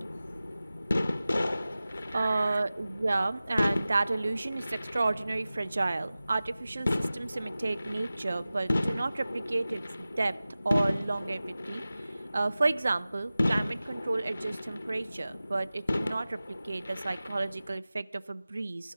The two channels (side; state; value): both; inverted; correlation -0.97